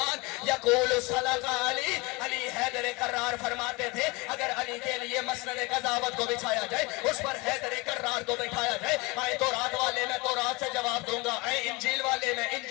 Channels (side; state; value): right; quieter; 25.5 dB